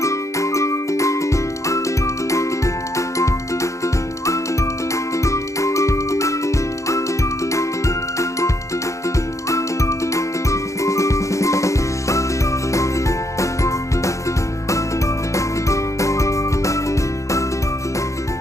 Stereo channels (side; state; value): right; late; 0.15 ms